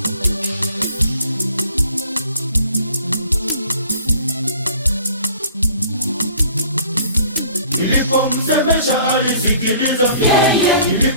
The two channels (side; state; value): both; inverted; correlation -0.53